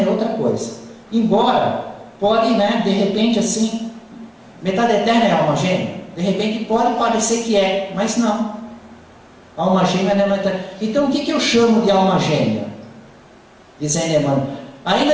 é outra coisa. Embora, pode, de repente, assim, metade eterna é alma gêmea. De repente pode parecer que é, mas não. Alma gêmea não é metade. Então o que eu chamo de alma gêmea? Dizendo Emmanuel. Aí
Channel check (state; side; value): identical; both; correlation 1.00